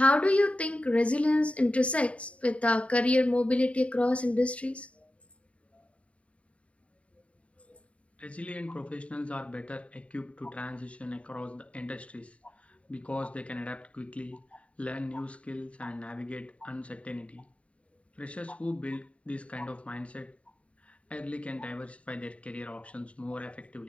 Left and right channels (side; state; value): right; late; 0.063 ms